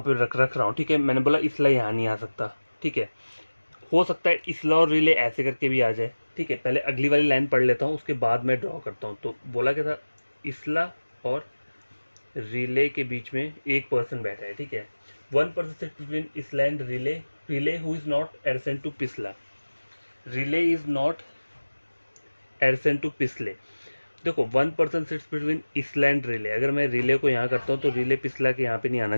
पे रख रहा हूँ, ठीक है। मैंने बोला इसला यहाँ नहीं आ सकता, ठीक है। हो सकता है इसला और रिले ऐसे करके भी आ जाए, ठीक है। पहले अगली वाली लाइन पढ़ लेता हूँ, उसके बाद मैं ड्रॉ करता हूँ। तो बोला क्या था, इसला और रिले के बीच में 1% बैठा है, ठीक है। 1% sit between Isla and Riley, Riley who is not adjacent to पिछला, Riley is not adjacent to पिछले। देखो 1% sits between Isla and Riley, अगर मैं रिले को यहाँ करता हूँ तो रिले पिछला के यहाँ पे नहीं आना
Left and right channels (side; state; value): both; inverted; correlation -1.00